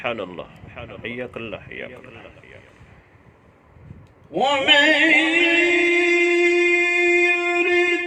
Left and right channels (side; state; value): both; identical; correlation 1.00